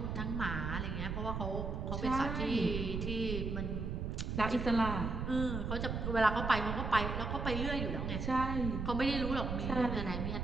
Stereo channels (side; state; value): right; noise; rumble, 3 dB below the sound